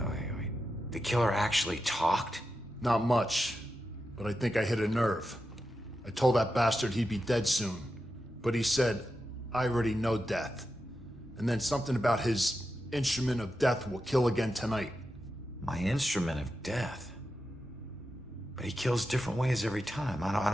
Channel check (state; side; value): normal; both; correlation 0.89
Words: The killer actually talked? Not much, but I think I hit a nerve. I told that bastard he'd be dead soon, but he said, I already know death. And then something about his instrument of death will kill again tonight. My instrument of death? But he kills different ways every time. I